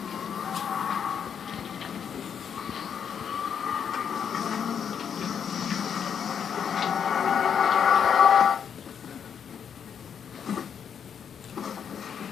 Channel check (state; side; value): quieter; right; 7.7 dB